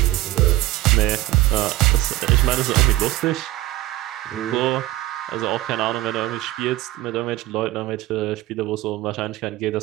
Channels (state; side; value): quieter; left; 16.3 dB